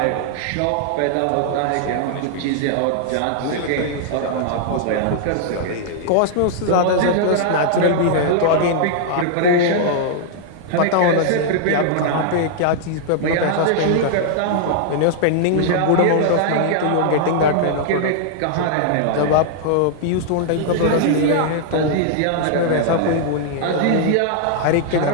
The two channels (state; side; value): different; both; correlation -0.01